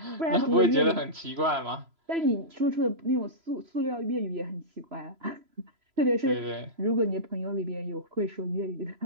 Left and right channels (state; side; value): late; left; 3.0 ms